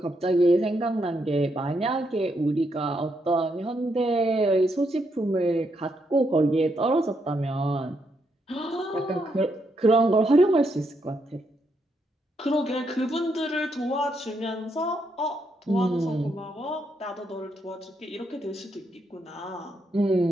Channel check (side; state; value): both; normal; correlation 0.78